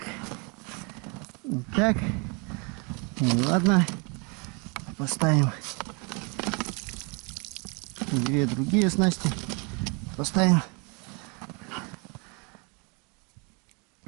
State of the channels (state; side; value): quieter; left; 32.8 dB